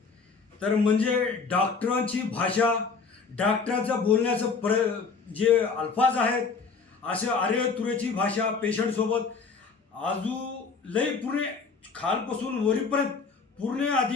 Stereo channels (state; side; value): quieter; right; 4.9 dB